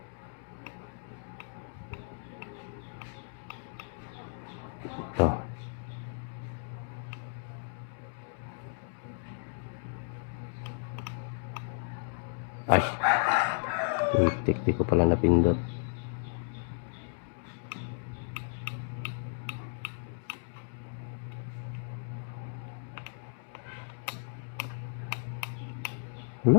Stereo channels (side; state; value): right; silent; digital silence